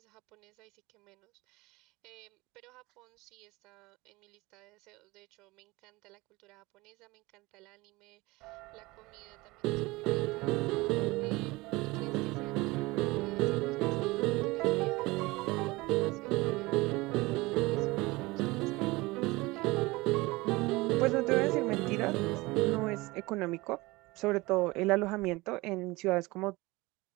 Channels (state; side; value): quieter; left; 22.0 dB